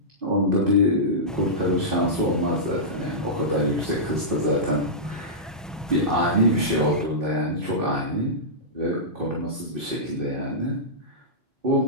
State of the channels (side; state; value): both; normal; correlation -0.15